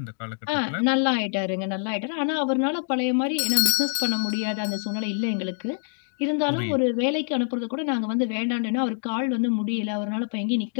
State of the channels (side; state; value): right; silent; digital silence